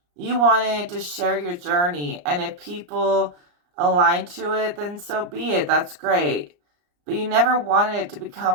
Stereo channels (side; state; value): left; late; 34 ms